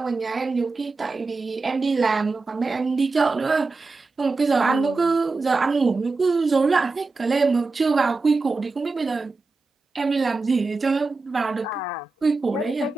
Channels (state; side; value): quieter; left; 3.8 dB